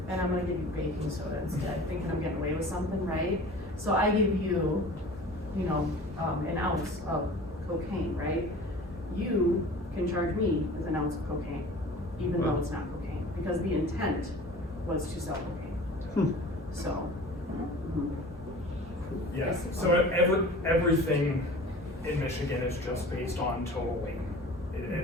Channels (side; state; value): both; normal; correlation 0.41